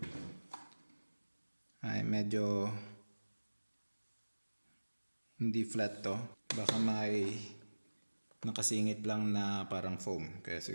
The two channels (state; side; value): inverted; both; correlation -1.00